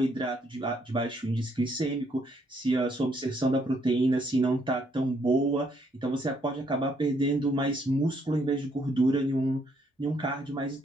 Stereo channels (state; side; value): normal; both; correlation 0.70